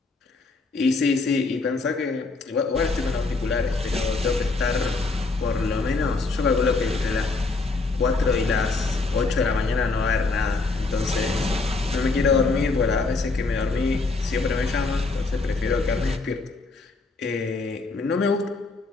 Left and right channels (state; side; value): quieter; right; 3.7 dB